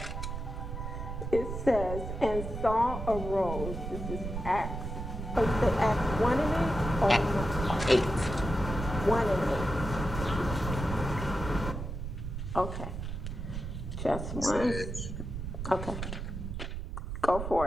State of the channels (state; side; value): noise; right; rumble, 6 dB below the sound